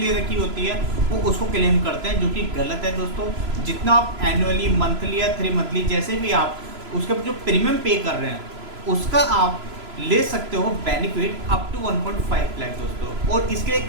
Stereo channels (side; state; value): left; late; 3.0 ms